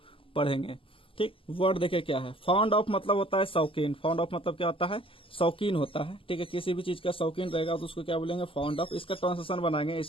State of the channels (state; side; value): late; right; 0.26 ms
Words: पढ़ेंगे। ठीक, वर्ड देखे क्या है, फाउंड ऑफ मतलब होता है शौकीन। फाउंड ऑफ मतलब क्या होता है, शौकीन होता है। ठीक है, किसी भी चीज का शौकीन रहेगा तो उसको क्या बोलेंगे, फाउंड ऑफ। इसका ट्रांसलेशन बनाएंगे,